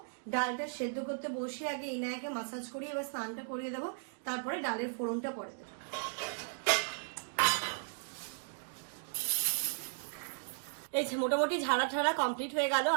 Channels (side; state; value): left; silent; digital silence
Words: ডালটা সেদ্ধ করতে বসে আগে ইনায়াকে মাসাজ করিয়ে এবার স্নানটা করিয়ে দেবো, তারপরে ডালের ফোড়নটা পরে দেবো। এই যে মোটামুটি ঝাড়া কমপ্লিট হয়ে গেল।